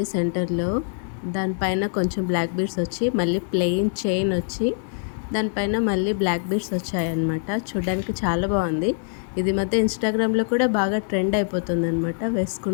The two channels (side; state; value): right; silent; digital silence